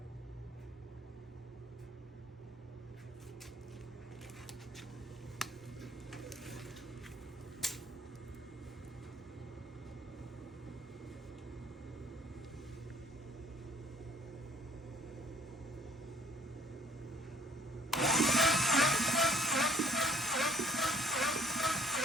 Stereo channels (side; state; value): both; normal; correlation 0.60